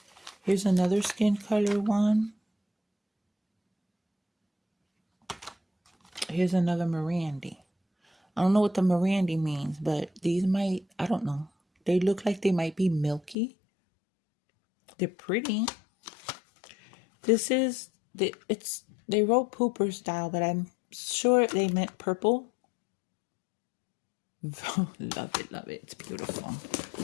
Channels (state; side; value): drops out; right; at 13.4 s